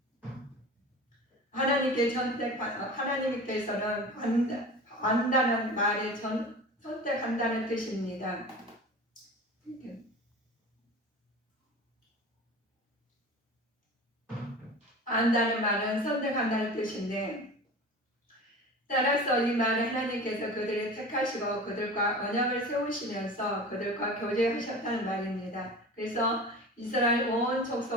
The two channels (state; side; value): normal; both; correlation 0.35